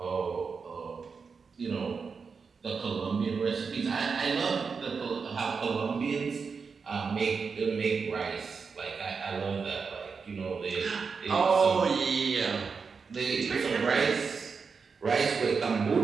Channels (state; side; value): quieter; left; 5.3 dB